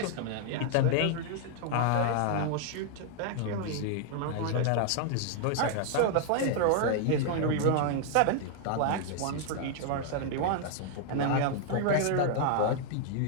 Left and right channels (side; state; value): both; different; correlation 0.00